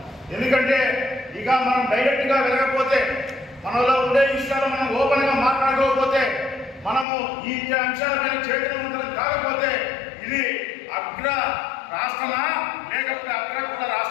ఎందుకంటే ఇక మనం డైరెక్ట్గా వెళ్ళకపోతే, మనలో ఉండే విషయాలు మనం ఓపెన్గా మాట్లాడుకోకపోతే, మనము ఈ అంశాలపైన చైతన్యవంతులం కాకపోతే ఇది అగ్ర రాష్ట్రమా లేకపోతే అగ్రకుల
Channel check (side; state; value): right; drops out; at 7.1 s